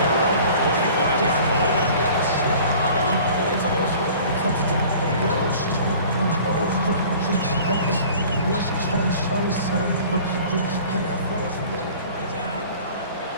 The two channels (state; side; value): inverted; both; correlation -0.47